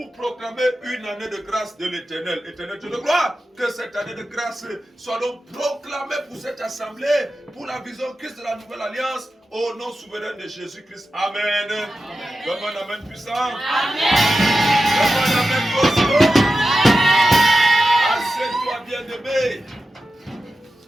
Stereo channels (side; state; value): both; normal; correlation 0.92